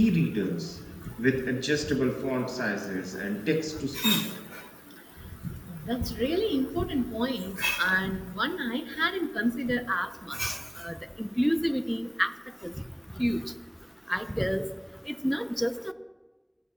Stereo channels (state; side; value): identical; both; correlation 1.00